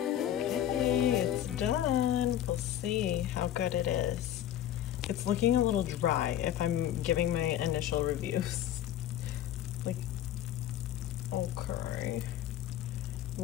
Okay, it's done. We'll see how good it is. It's looking a little dry if I'm giving my initial reviews. Like, okay.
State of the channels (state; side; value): quieter; right; 11.5 dB